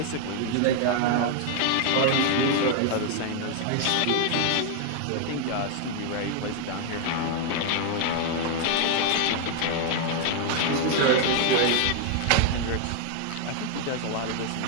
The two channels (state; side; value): different; both; correlation 0.00